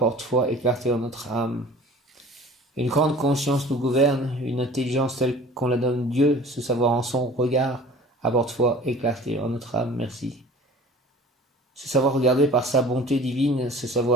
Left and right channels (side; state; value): both; normal; correlation 0.45